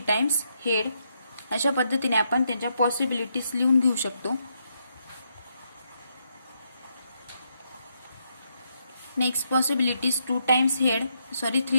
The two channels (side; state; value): both; inverted; correlation -0.79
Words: times head. अशा पद्धतीने आपण त्यांच्या पॉसिबिलिटीज लिहून घेऊ शकतो. Next possibilities 3 times head,